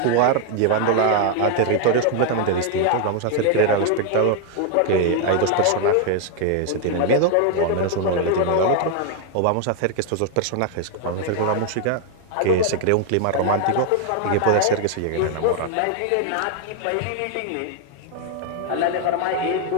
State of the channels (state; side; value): different; both; correlation 0.00